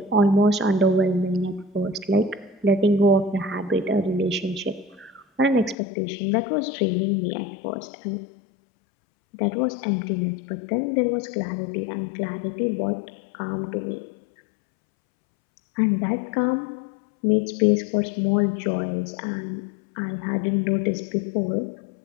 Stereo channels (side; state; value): right; drops out; at 5.8 s